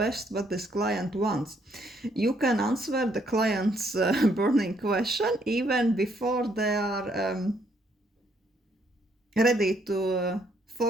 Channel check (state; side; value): normal; both; correlation 0.70